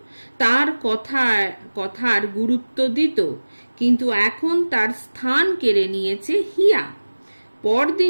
তার কথার গুরুত্ব দিত, কিন্তু এখন তার স্থান কেড়ে নিয়েছে হিয়া।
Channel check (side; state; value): both; inverted; correlation -1.00